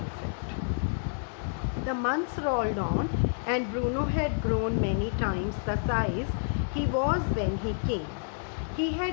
The months rolled on, and Bruno had grown many times the size he was when he came. He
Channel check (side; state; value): right; silent; digital silence